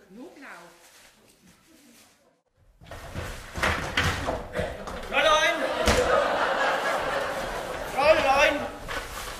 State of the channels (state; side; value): identical; both; correlation 1.00